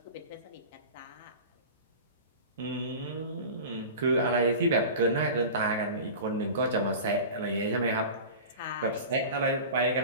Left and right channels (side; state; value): both; inverted; correlation -0.34